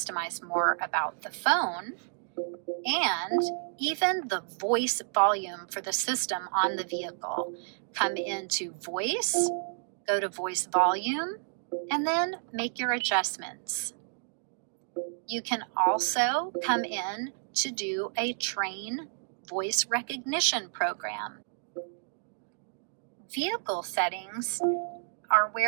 more about the phone, and even the voice volume for the system on the vehicle. Come into voice, go to voice volume, and then make your adjustments. You can also come in to do a train voice recognition program. Vehicle settings are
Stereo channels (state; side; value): silent; left; digital silence